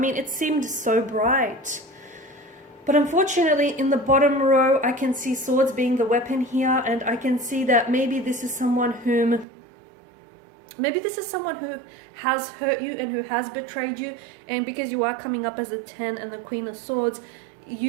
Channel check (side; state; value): left; drops out; at 9.5 s